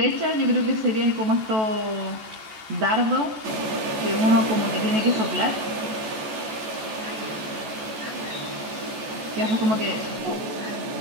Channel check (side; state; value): left; late; 14 ms